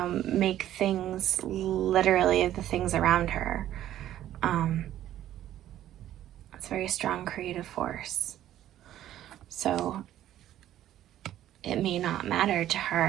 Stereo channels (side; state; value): left; quieter; 12.4 dB